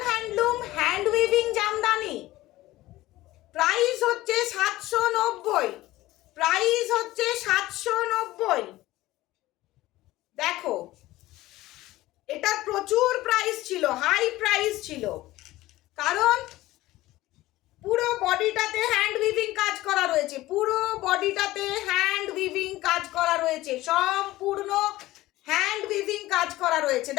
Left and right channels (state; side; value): quieter; right; 17.2 dB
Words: handloom hand weaving Jamdani. Price হচ্ছে 790, প্রাইস হচ্ছে 790। দেখো এটা প্রচুর প্রাইস ছিল, হাই প্রাইস ছিল, কারণ পুরো বডিটাতে হ্যান্ড উইভিং কাজ করা রয়েছে, পুরো বডিটাতে হ্যান্ড উইভিং কাজ করা রয়েছে, সম্পূর্ণ হ্যান্ড উইভিং কাজ করা রয়েছে।